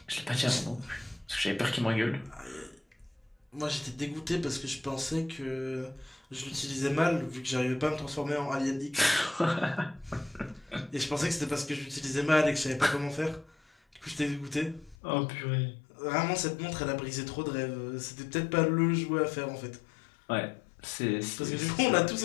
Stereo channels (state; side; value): drops out; right; at 15.0 s